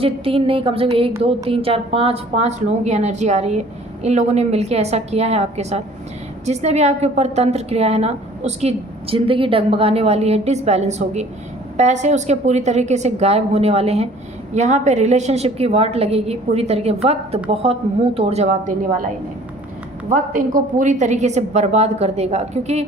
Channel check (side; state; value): both; normal; correlation 0.52